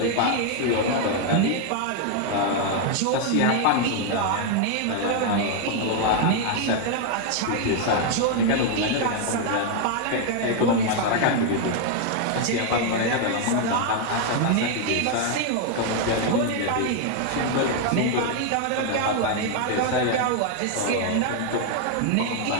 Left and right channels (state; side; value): different; both; correlation 0.00